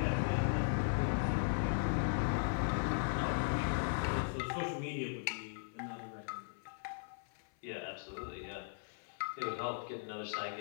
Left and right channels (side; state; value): right; silent; 52 dB below the other